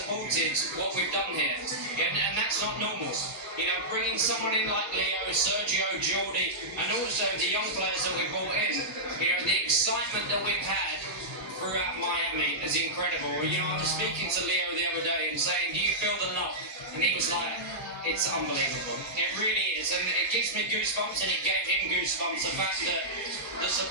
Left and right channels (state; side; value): normal; both; correlation -0.12